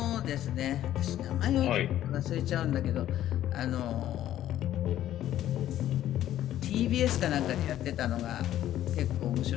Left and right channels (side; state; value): right; quieter; 12.4 dB